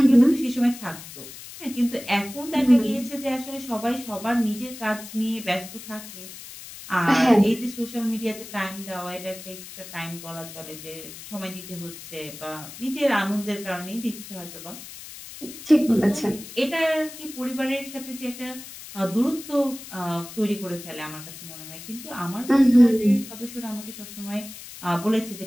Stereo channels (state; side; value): noise; left; hiss, 14 dB below the sound